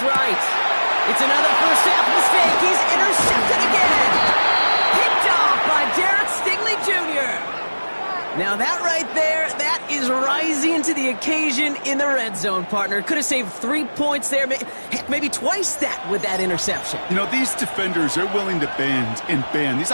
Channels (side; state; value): both; inverted; correlation -1.00